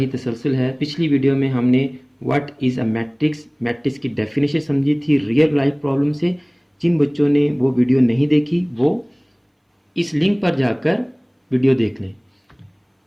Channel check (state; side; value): identical; both; correlation 1.00